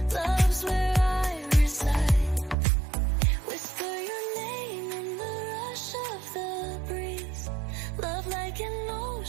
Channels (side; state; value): left; drops out; at 2.6 s